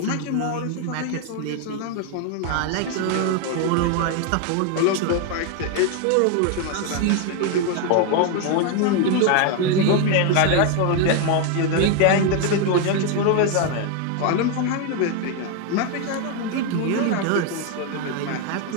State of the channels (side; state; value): both; different; correlation 0.01